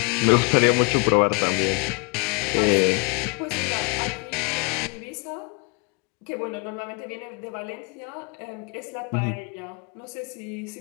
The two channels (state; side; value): quieter; right; 32.5 dB